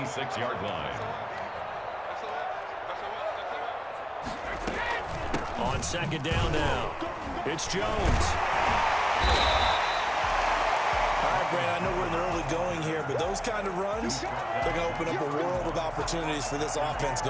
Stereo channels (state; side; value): identical; both; correlation 1.00